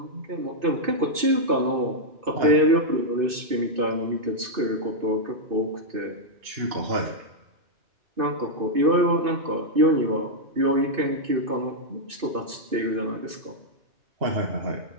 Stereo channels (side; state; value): left; late; 2.6 ms